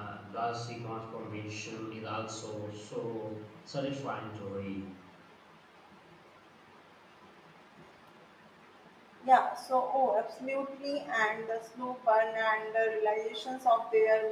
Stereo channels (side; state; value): both; identical; correlation 1.00